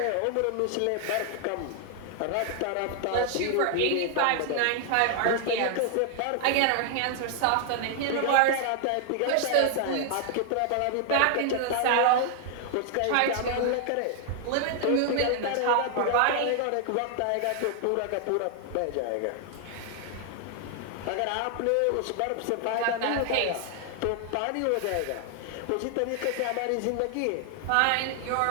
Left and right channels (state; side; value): different; both; correlation 0.00